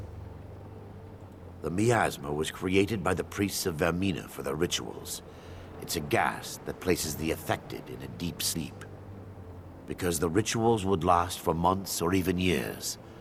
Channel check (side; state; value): both; identical; correlation 1.00